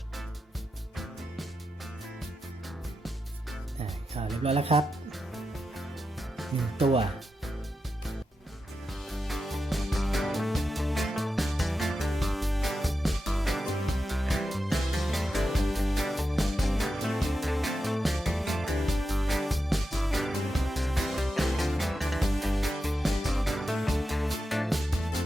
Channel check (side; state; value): both; normal; correlation 0.89